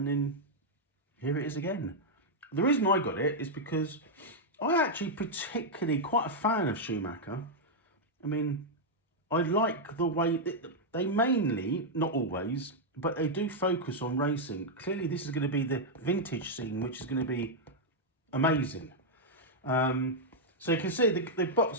then here it is again. The reason I got it is because I actually particularly quite a fan of Schumacher. I mean, I like the way they mainly, not always, but they do focus on racing. Clearly, this is going to be the vintage scene, which is going to be amazing. So you can see the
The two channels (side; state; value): both; normal; correlation -0.03